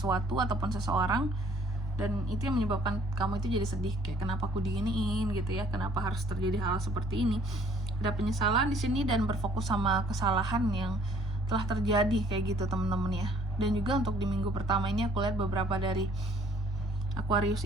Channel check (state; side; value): normal; both; correlation 0.60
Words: ataupun seseorang, dan itu yang menyebabkan kamu itu jadi sedih, kayak kenapa aku diginiin gitu ya, kenapa harus terjadi hal seperti ini. Ada penyesalan di sini dan berfokus sama kesalahan yang telah terjadi kayak gitu teman-teman ya. Dan juga untuk di minggu pertama ini aku lihat beberapa dari